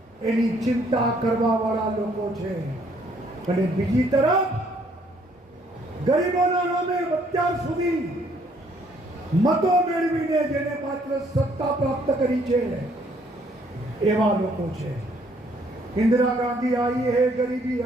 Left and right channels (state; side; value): normal; both; correlation 0.65